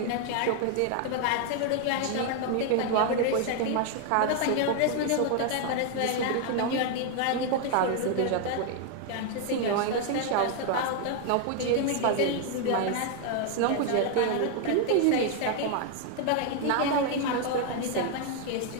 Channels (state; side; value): different; both; correlation 0.00